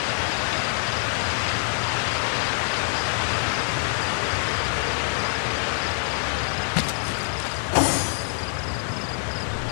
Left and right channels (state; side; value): silent; right; 58 dB below the other